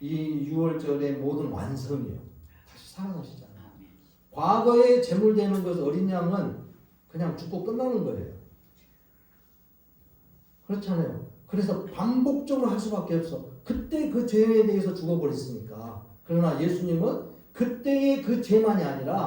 유월절의 모든 완성이에요. 다시 살아나시잖아요. 과거에 제물되는 것 어린 양은 그냥 죽고 끝나는 거예요. 그렇잖아요. 그래서 반복적으로 할 수밖에 없어. 그때 그 죄에 대해서 죽어버렸으니까. 그러나 예수님은 그때의 그 죄만이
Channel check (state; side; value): identical; both; correlation 1.00